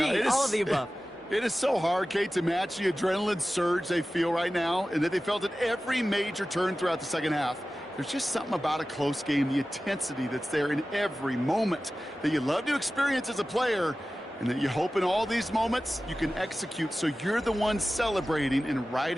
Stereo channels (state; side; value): normal; both; correlation 0.95